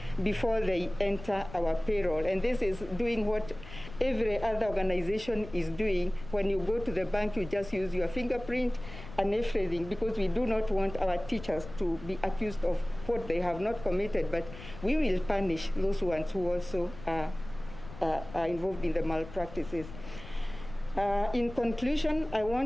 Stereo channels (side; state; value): left; noise; rumble, 15 dB below the sound